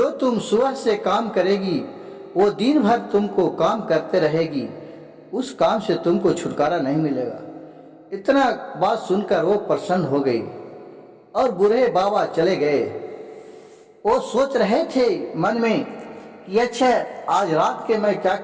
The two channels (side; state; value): both; identical; correlation 1.00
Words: तुम सुबह से काम करेगी वो दिन भर तुमको काम करते रहेगी, उस काम से तुमको छुटकारा नहीं मिलेगा। इतना बात सुनकर वो प्रसन्न हो गई और बूढ़े बाबा चले गए। वो सोच रहे थे मन में कि अच्छा आज रात के मैं क्या